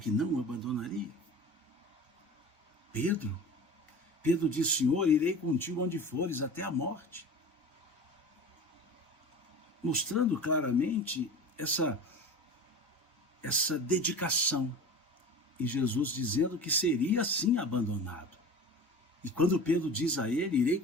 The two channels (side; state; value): both; normal; correlation 0.35